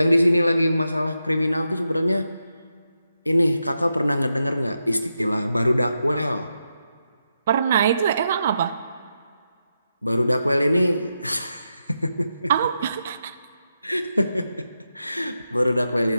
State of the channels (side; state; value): both; inverted; correlation -0.86